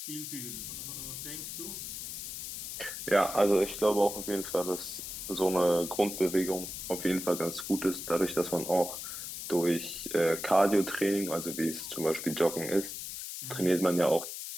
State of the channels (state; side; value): noise; left; hiss, 7 dB below the sound